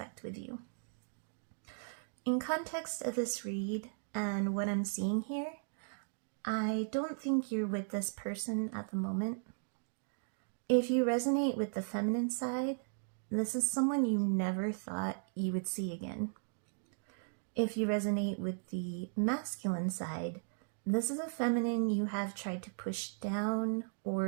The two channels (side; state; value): left; silent; digital silence